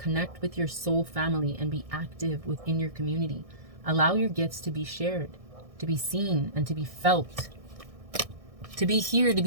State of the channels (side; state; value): left; late; 1.6 ms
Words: with your soul family and be active within your community. Allow your gifts to be shared, to be seen, and to be felt. To be here, to